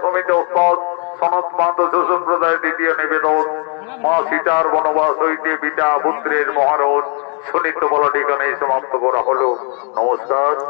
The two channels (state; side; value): quieter; right; 38.3 dB